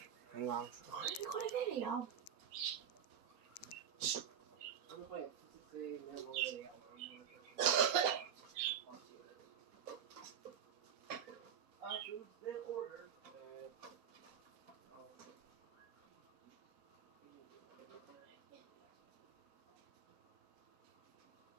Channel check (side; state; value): left; quieter; 8.5 dB